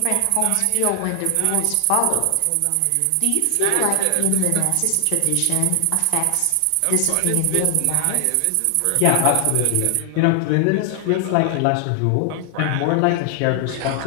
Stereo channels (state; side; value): different; both; correlation 0.00